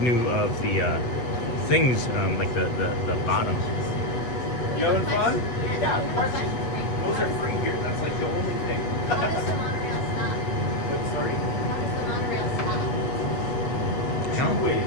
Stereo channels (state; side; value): late; right; 8.1 ms